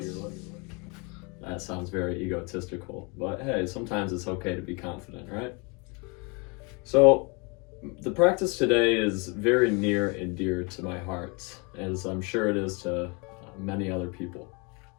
That sounds very egotistical, but hey, sometimes it's okay to be confident, right? So, the practice today is very near and dear to my heart, as I'm sure it is to many other people.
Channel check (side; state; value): right; quieter; 31.0 dB